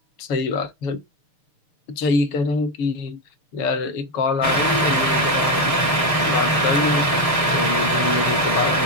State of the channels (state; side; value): late; right; 6.5 ms